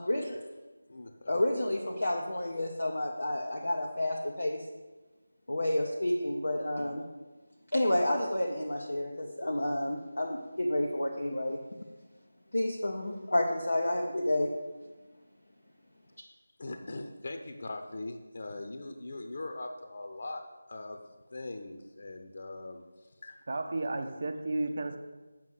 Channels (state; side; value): inverted; both; correlation -0.96